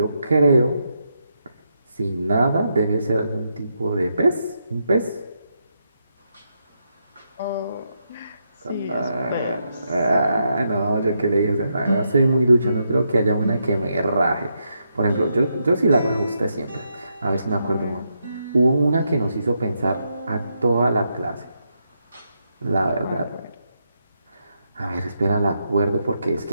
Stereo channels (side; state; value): both; inverted; correlation -0.81